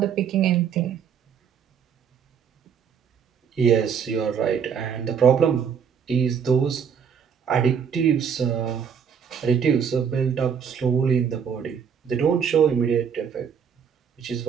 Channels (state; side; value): quieter; left; 7.3 dB